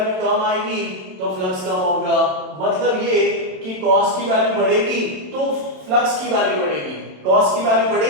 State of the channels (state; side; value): late; left; 27 ms